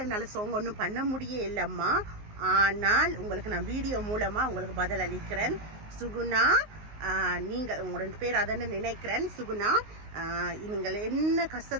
என்னால் சாங் ஒன்றும் பண்ண முடியே இல்லைம்மா, ஆனால் உங்களுக்கு நான் வீடியோ மூலமாக உங்களுக்கு பதில் அளிக்கிறேன். சுகுணா, நீங்கள் உங்களோட பேர் அதன்னு நினைக்கிறேன். சுகுணா, நீங்கள் என்ன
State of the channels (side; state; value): left; late; 19 ms